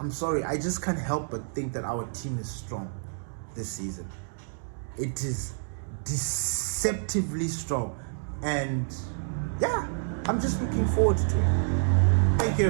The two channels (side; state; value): left; silent; digital silence